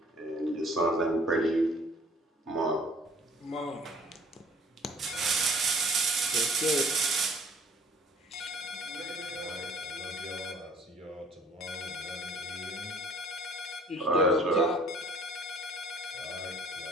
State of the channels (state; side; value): normal; both; correlation 0.55